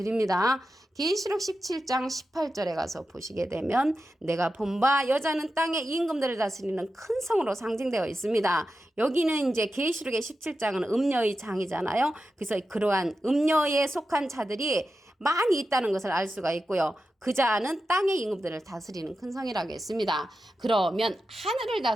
계시록 17장 18절에 가서 보시게 되면 내가 본 바 여자는 땅의 임금들을 다스리는 큰 성으로 상징되어 있습니다. 여기는 이제 계시록의 17장은 음녀의 장이잖아요. 그래서 그러한 음녀에 속한 자들이 많이 있다는 것을 알 수가 있고요. 그 자는 땅의 임금들을 다스리는 큰 성이라고 했습니다. 그러면 하늘을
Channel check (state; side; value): normal; both; correlation 0.91